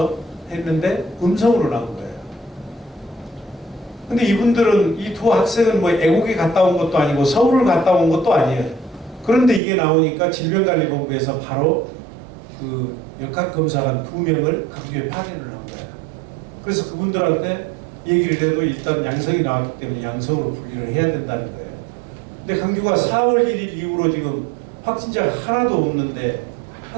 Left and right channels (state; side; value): drops out; left; at 9.6 s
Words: 했는데 음성으로 나온 거예요. 근데 이분들은 이 두 학생은 뭐 애국에 갔다 온 것도 아니고 서울을 갔다 온 것도 아니에요. 그런데 이게 나오니까 질병관리본부에서 바로 그 역학검사관 2명을 강주에 파견을 한 거예요. 그래서 그분들한테 얘기를 해도 일단 양성이 나왔기 때문에 양성으로 분리를 해야 된다는 거예요. 근데 강주가 4월 1일 이후로 지금 확진자가 하나도 없는데